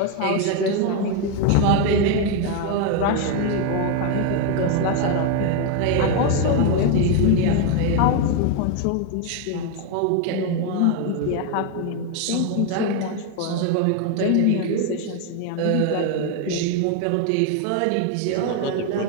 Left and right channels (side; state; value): both; different; correlation 0.01